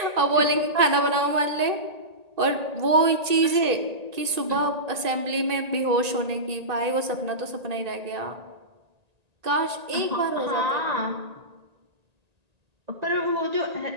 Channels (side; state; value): left; late; 1.8 ms